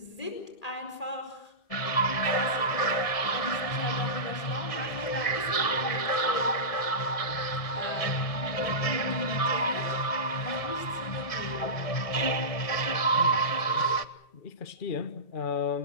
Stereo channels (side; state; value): right; late; 1.7 ms